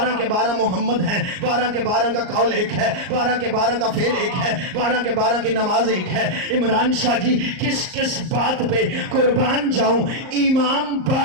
کے 12 محمد ہیں، 12 کے 12 کا قول ایک ہے، 12 کے 12 کا فعل ایک ہے، 12 کے 12 کی نماز ایک ہے۔ عمران شاہ جی کس کس بات پہ قربان جاؤں؟ امام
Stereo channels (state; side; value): late; left; 38 ms